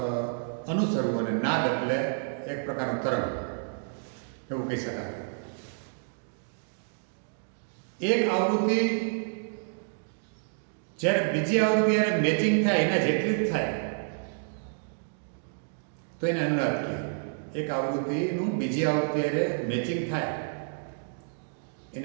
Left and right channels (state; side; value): silent; left; digital silence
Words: અનુસરવું અને નાદ એટલે એક પ્રકારનું તરંગ, એવું કહી શકાય. એક આવૃત્તિ જ્યારે બીજી આવૃત્તિ જ્યારે મેચિંગ થાય એના જેટલી જ થાય તો એને અનુનાદ કહે. એક આવૃત્તિનું બીજી આવૃત્તિ જ્યારે મેચિંગ થાય